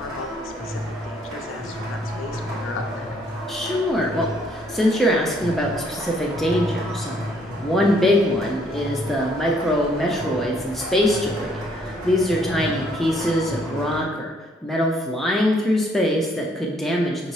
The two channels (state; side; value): normal; both; correlation 0.66